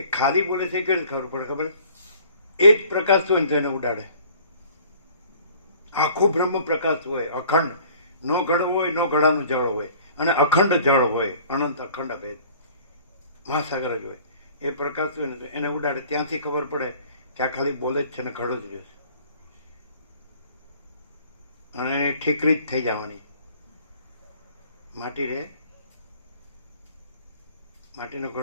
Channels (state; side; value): inverted; both; correlation -0.52